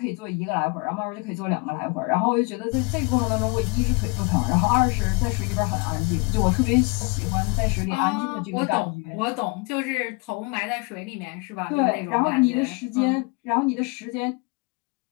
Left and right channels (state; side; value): quieter; right; 29.9 dB